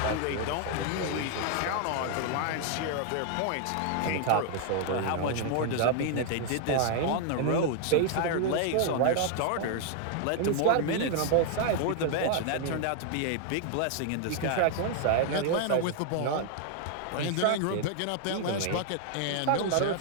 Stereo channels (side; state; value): both; different; correlation 0.00